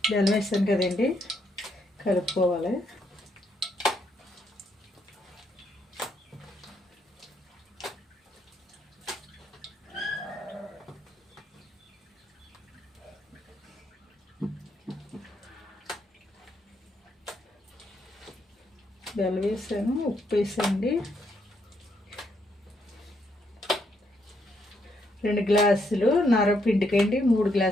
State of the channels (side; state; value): both; normal; correlation 0.75